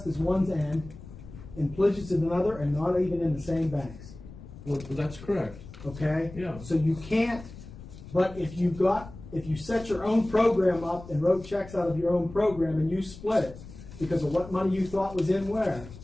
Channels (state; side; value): noise; left; rumble, 16 dB below the sound